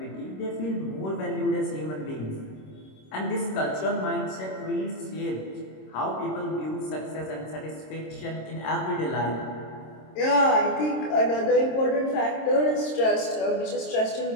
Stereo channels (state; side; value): late; right; 26 ms